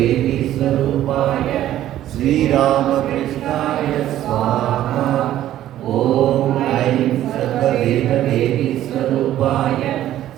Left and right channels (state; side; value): quieter; left; 12.8 dB